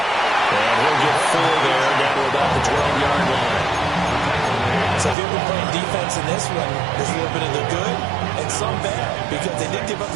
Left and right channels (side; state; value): left; drops out; at 5.2 s